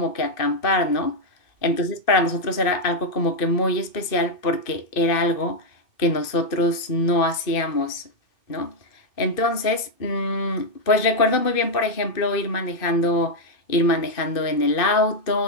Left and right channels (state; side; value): late; right; 2.5 ms